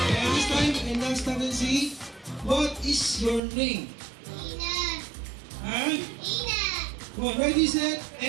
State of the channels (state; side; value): drops out; left; at 3.4 s